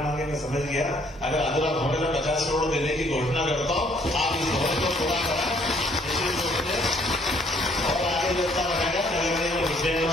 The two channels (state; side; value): normal; both; correlation 0.64